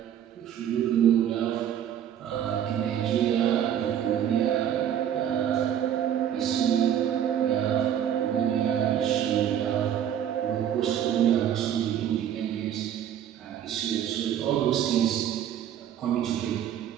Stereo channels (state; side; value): quieter; left; 9.9 dB